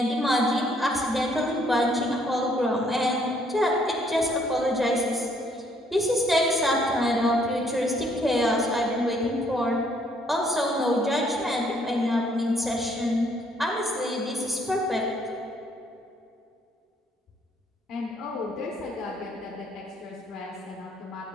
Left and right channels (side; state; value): both; normal; correlation 0.66